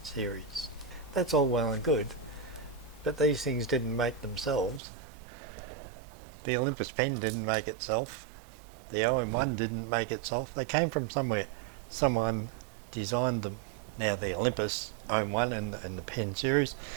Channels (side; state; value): left; drops out; at 4.8 s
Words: series. That's all well and good, but these things didn't make themselves. The Olympus pen didn't make itself. The OM1 didn't make itself. They came from somewhere. Someone designed them. Now the Olympus OM1 and the pen series,